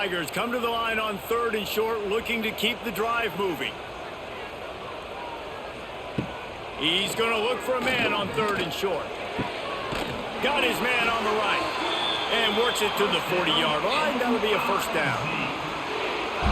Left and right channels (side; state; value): both; identical; correlation 1.00